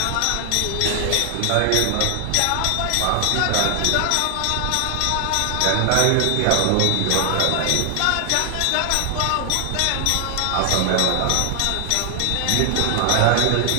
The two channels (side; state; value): both; different; correlation 0.00